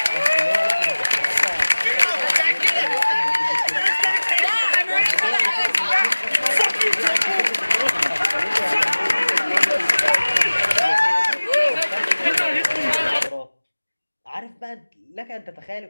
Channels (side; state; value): both; inverted; correlation -1.00